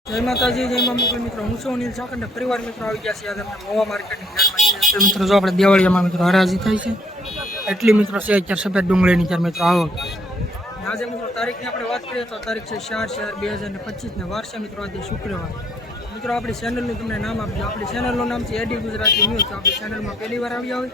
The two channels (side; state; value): both; normal; correlation 0.66